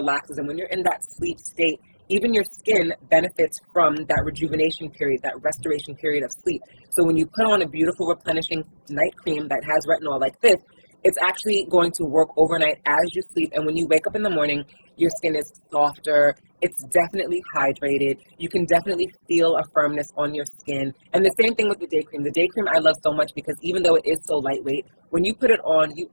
And when you're in that sleep state, even your skin benefits from that rejuvenation period, that restoration period of sleep. So when you put on a beautiful replenishing night cream that has retinol like this, it's actually going to work overnight as you sleep. And when you wake up in the morning, your skin is softer. It's definitely hydrated. You can definitely feel a firmness on your skin. And the same thing with the day cream. The day cream I love so much because even though it is so lightweight, when you put it on, you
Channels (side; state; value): both; inverted; correlation -1.00